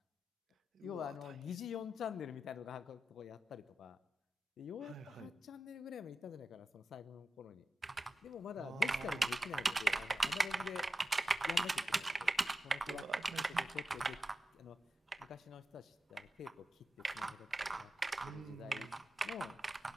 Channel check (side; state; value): both; normal; correlation 0.92